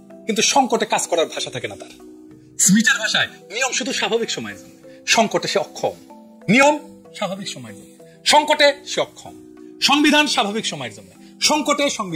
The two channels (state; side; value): identical; both; correlation 1.00